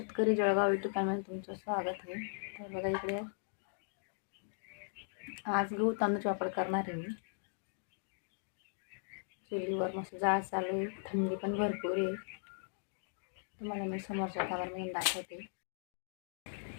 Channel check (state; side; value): silent; right; digital silence